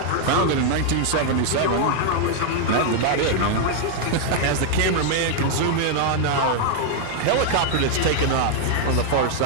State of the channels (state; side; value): different; both; correlation 0.00